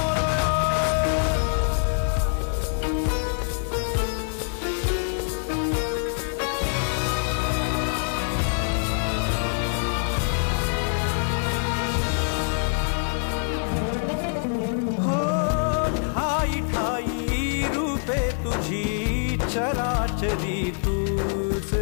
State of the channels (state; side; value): silent; right; 55 dB below the other